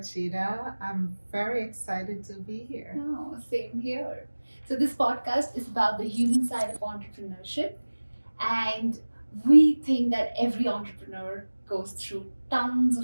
I'm very excited to be here. Oh, same here. So, this podcast is about the human side of entrepreneurship, and we think that every entrepreneur goes through tons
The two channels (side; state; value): both; inverted; correlation -1.00